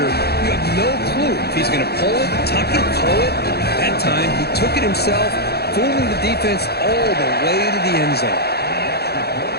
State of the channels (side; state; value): right; late; 0.47 ms